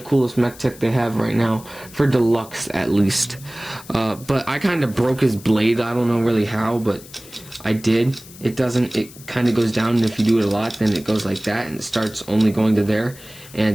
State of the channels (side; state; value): left; noise; hiss, 19 dB below the sound